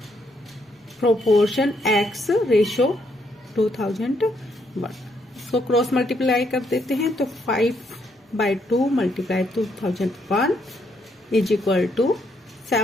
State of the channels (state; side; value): normal; both; correlation 0.74